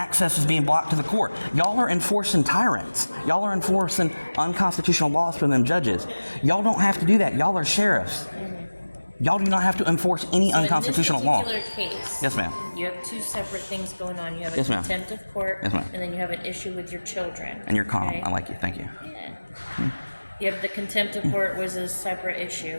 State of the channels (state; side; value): inverted; both; correlation -1.00